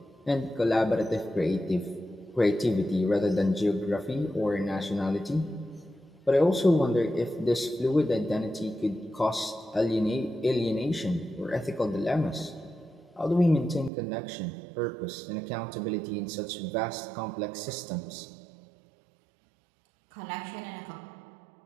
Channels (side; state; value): left; drops out; at 13.9 s